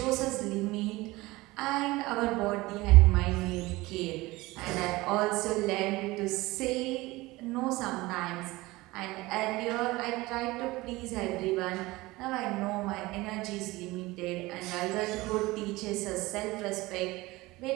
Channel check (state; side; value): quieter; left; 20.4 dB